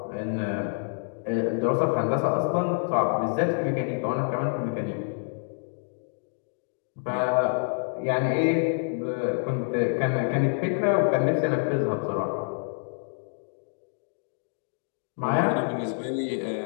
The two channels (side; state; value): right; silent; digital silence